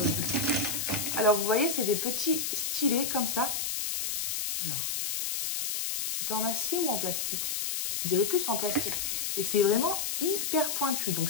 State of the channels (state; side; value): noise; left; hiss, 1 dB below the sound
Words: Alors, vous voyez, c'est des petits stylets comme ça. Alors, c'est en acier ou en plastique? On dirait plus en plastique. Et c'est vraiment hyper pointu. Donc